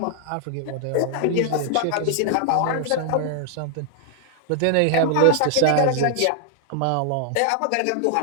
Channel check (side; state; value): both; different; correlation 0.00